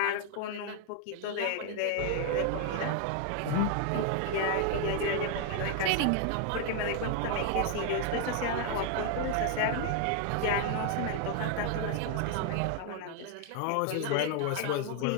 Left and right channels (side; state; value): both; different; correlation 0.00